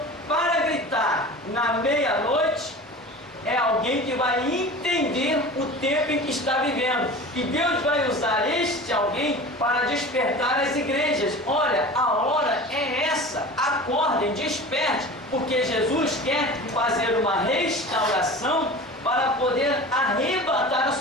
para gritar na meia-noite é alguém que vai entender o tempo em que está vivendo, e Deus vai usar este alguém para despertar as igrejas. Olha, a hora é essa, acordem, desperte, porque Jesus quer fazer uma restauração para poder arrebatar a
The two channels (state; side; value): normal; both; correlation 0.36